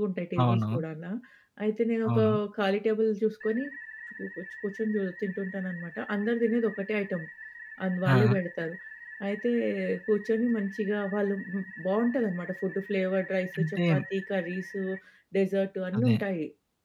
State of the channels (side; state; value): both; identical; correlation 1.00